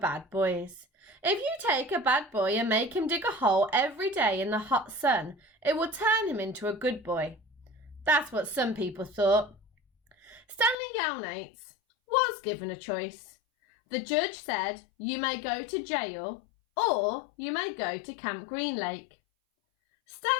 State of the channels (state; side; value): drops out; right; at 10.8 s